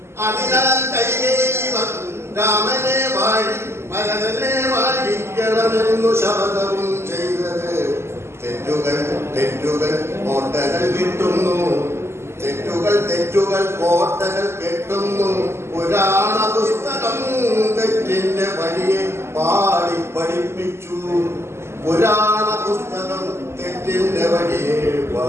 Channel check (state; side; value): late; left; 0.12 ms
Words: അതിനാൽ കൈകേയി രാമനെ ഭരതനെ വാഴിക്കണമെന്നു ശപഥവും ചെയ്തത്. തെറ്റുകൾ കോട്ടകൾ കിട്ടുന്നു. തെറ്റുകൾ കോട്ടകൾ കെട്ടുന്നു. പുരാണ പുസ്തകം തെറ്റിന്റെ വഴിയെ പാടി പഠിപ്പിച്ചു. പുരാണ പുസ്തകം തെറ്റിന്റെ വഴിയെ